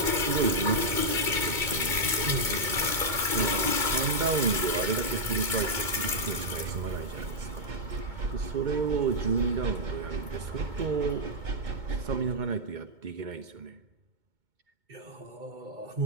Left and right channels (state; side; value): late; left; 2.2 ms